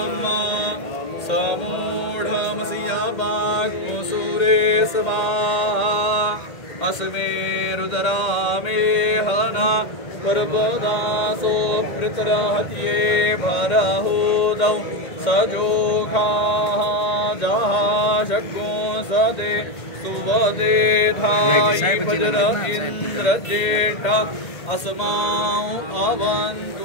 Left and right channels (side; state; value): right; late; 1.9 ms